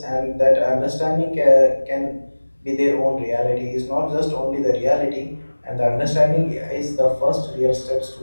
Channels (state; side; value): inverted; both; correlation -1.00